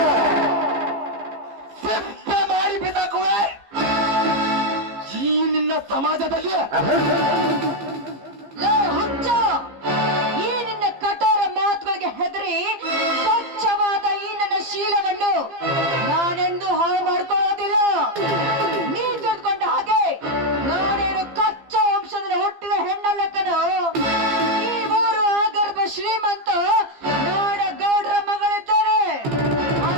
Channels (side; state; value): left; late; 15 ms